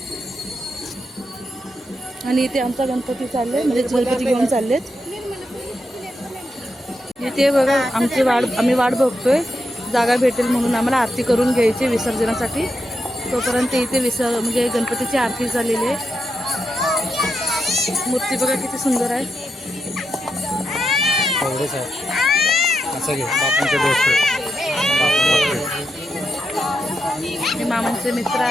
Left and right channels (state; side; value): normal; both; correlation 0.85